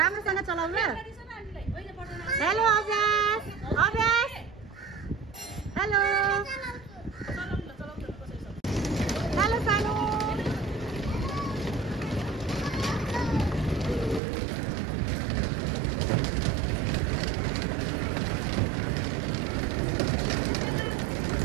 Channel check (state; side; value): drops out; left; at 14.2 s